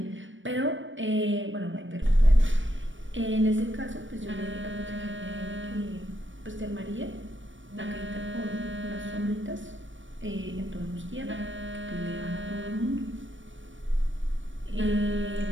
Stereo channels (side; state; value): left; late; 0.56 ms